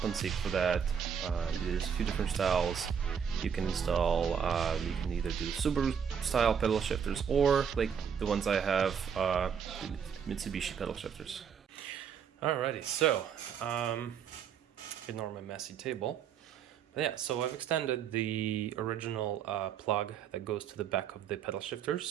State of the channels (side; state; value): left; quieter; 7.5 dB